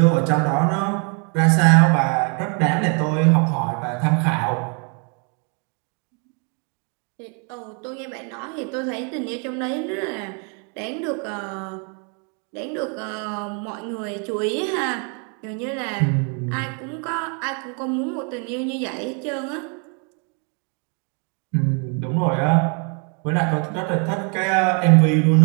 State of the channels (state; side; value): quieter; left; 37.8 dB